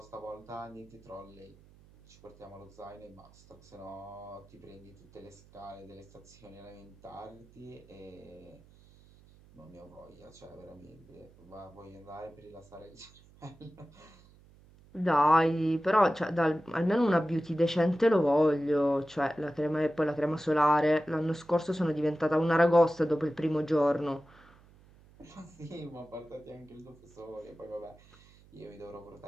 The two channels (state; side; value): noise; right; hum, 26 dB below the sound